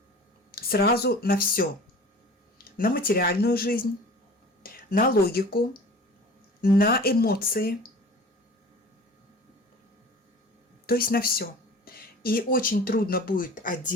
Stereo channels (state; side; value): normal; both; correlation 0.42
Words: сразу на все. На материальную жизнь, на логику, на эмоции, то есть на все. И очень трудно будет